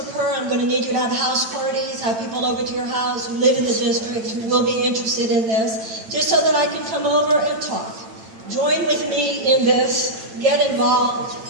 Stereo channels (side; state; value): left; late; 8.9 ms